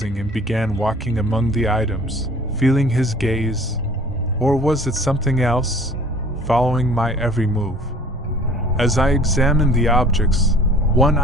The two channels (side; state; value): both; normal; correlation 0.50